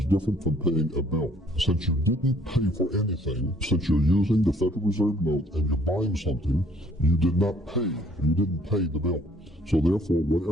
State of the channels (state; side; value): normal; both; correlation 0.62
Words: different from paying a bill. Since you didn't pay for anything, since you're using the Federal Reserve note and you're buying something, you did not pay. You didn't pay the bill. So therefore,